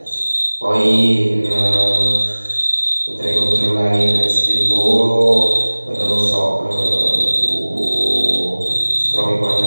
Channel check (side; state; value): both; inverted; correlation -1.00